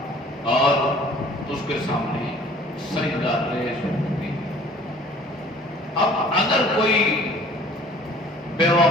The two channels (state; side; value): normal; both; correlation 0.51